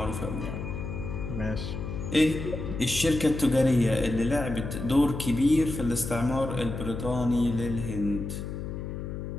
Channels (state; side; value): noise; left; hum, 6 dB below the sound